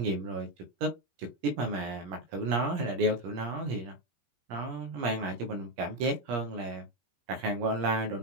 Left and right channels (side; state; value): left; late; 17 ms